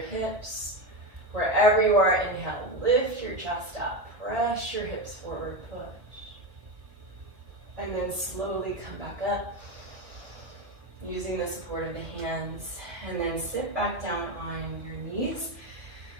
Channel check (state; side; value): late; left; 1.9 ms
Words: hips. Wherever you are, inhale, lift your chest up, press your hips forward, push. And then slowly come back up, using the support of the hands. And then sit back down on your knees.